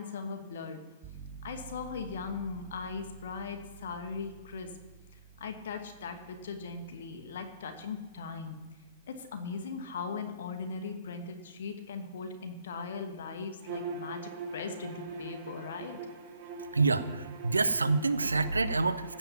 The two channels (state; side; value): inverted; both; correlation -0.71